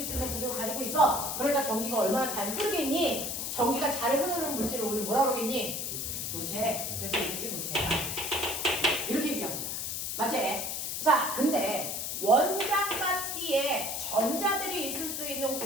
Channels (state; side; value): noise; left; hiss, 3 dB below the sound